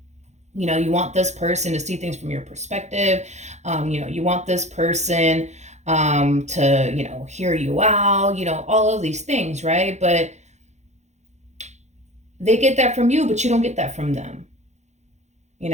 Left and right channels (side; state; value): left; late; 0.33 ms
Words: You want this person to see things from your perspective. You want this person to, hear you out, all of these things, right? But they get that from you, but you don't get that from them.